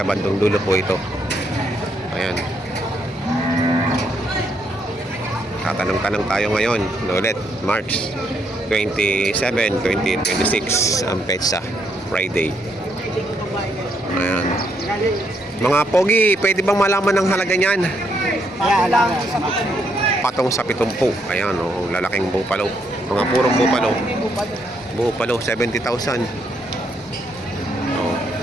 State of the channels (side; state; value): both; normal; correlation 0.75